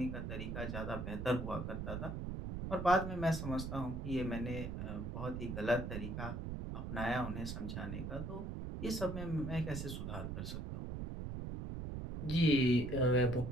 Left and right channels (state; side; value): noise; right; rumble, 5 dB below the sound